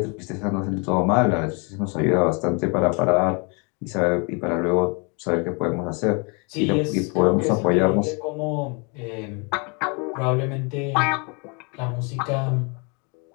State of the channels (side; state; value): right; quieter; 33.4 dB